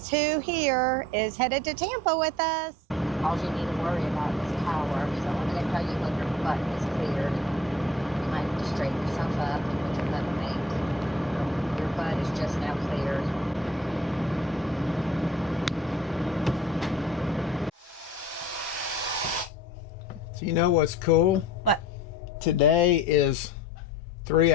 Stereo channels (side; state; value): both; normal; correlation 0.49